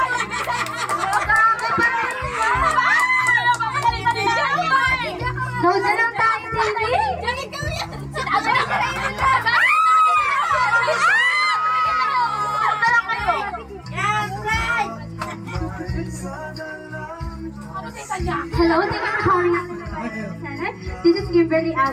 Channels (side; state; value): both; identical; correlation 1.00